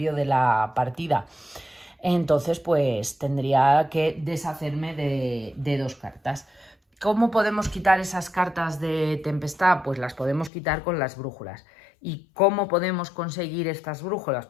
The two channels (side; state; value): right; drops out; at 10.5 s